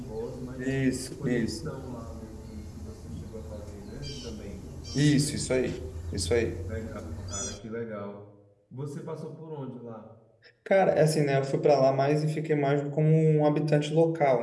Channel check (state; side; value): identical; both; correlation 1.00